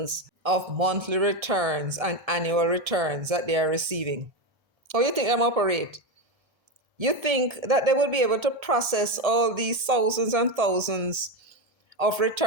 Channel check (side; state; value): left; late; 1.3 ms